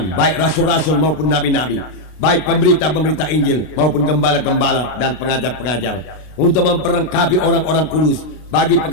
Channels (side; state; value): right; late; 33 ms